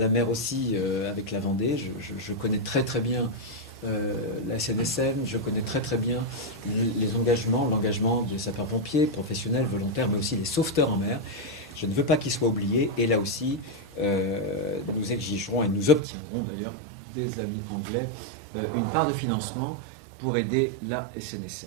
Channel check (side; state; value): left; drops out; at 16.0 s